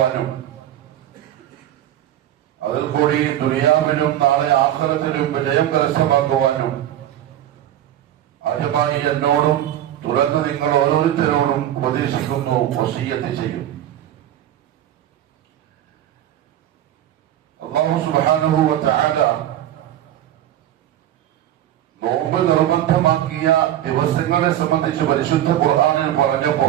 അതിൽ കൂടി ദുനിയാവിലും നാളെ ആഖിറത്തിലും വിജയം കരസ്ഥമാക്കുവാനും ആദ്യമായി എന്നോടും തുടർന്ന് നിങ്ങൾ ഓരോരുത്തരോടും ഉപദേശിക്കുന്നു, വസിയ്യത്ത് ചെയ്യും. അല്ലാഹു സുബ്ഹാനഹു വ തആല നോമ്പ് നിർബന്ധമാക്കിയ ദിവസങ്ങളെ സംബന്ധിച്ച് പരിശുദ്ധ ഖുർആനിൽ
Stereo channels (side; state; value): left; quieter; 12.1 dB